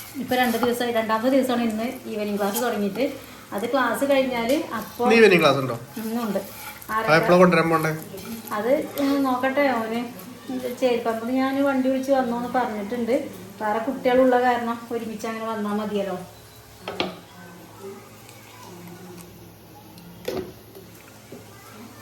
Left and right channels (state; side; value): identical; both; correlation 1.00